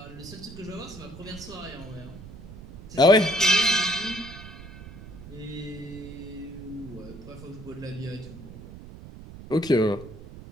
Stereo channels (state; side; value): noise; right; rumble, 15 dB below the sound